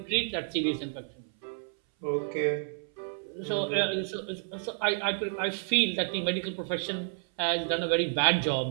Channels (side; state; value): left; silent; 58 dB below the other